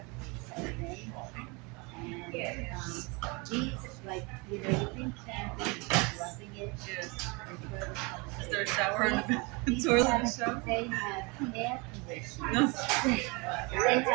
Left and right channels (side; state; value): left; quieter; 28.7 dB